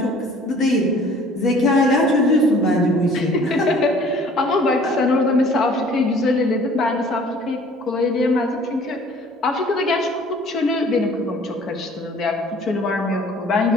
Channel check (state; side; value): normal; both; correlation 0.52